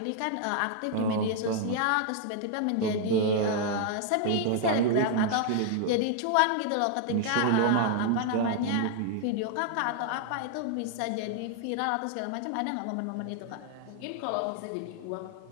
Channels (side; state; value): both; different; correlation 0.00